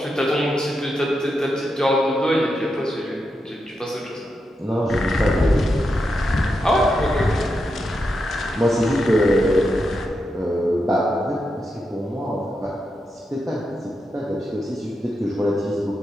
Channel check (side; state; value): both; normal; correlation 0.86